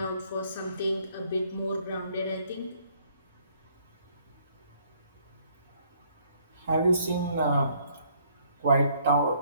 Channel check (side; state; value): both; inverted; correlation -0.65